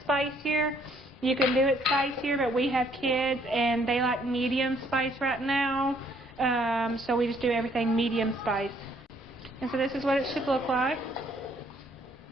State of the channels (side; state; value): both; normal; correlation 0.65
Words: spicier, you can do it spicier, but we have kids and they like medium spice right now. So we just do everything medium spice. And so this is what it should look like.